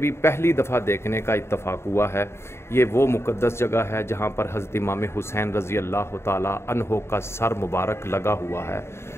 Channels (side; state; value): right; late; 0.12 ms